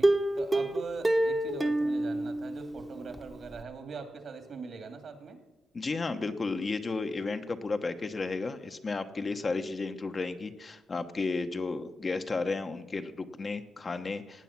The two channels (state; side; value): normal; both; correlation 0.91